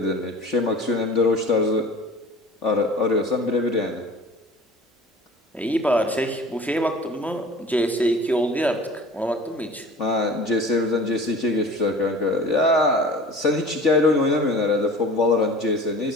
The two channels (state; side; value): normal; both; correlation 0.43